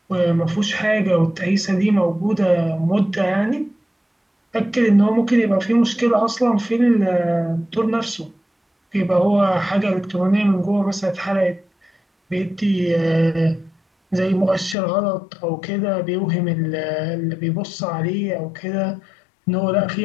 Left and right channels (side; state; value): right; drops out; at 14.8 s